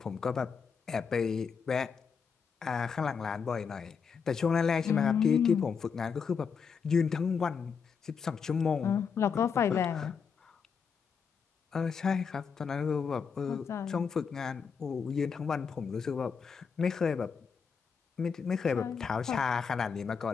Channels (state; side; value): quieter; right; 6.1 dB